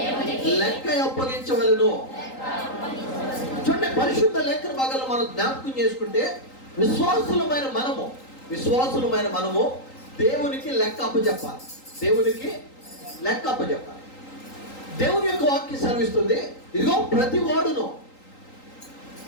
లెక్క అప్పగించవలెను. చూడండి, పరిశుద్ధ లేఖన భాగాలు మనం జ్ఞాపకం చేసుకుంటే, విశ్వాసులమైన మనము దేవునికి లెక్క అప్పచెప్పాలి. దేవునికి లెక్క అప్పచెప్పాలి. దేవుని యొక్క వాక్యం సెలవిస్తుంది, ఇదిగో ప్రతి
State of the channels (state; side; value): late; right; 3.8 ms